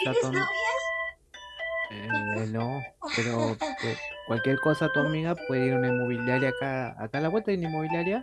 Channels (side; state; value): both; identical; correlation 1.00